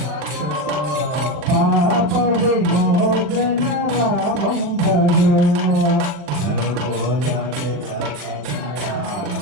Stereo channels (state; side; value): late; left; 40 ms